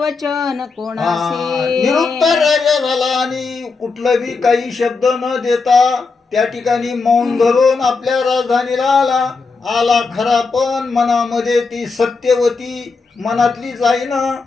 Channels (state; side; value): quieter; right; 4.4 dB